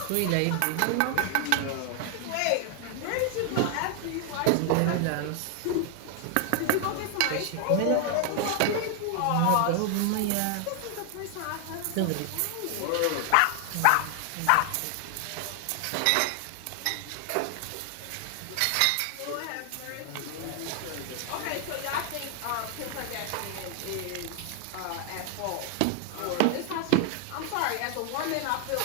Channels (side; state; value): both; different; correlation 0.00